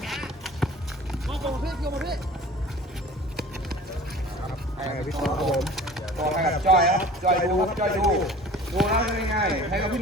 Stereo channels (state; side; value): normal; both; correlation 0.44